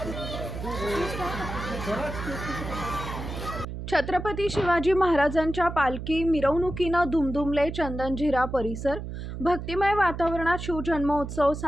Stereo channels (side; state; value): right; noise; hum, 7 dB below the sound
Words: छत्रपती शिवाजी महाराजांच्या पालखी मिरवणुकीनं दुमदुमले चंदनझिरा परिसर. भक्तिमय वातावरणात शिवजन्मोत्सव